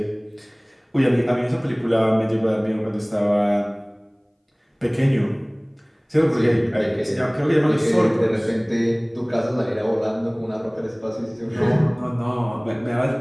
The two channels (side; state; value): both; identical; correlation 1.00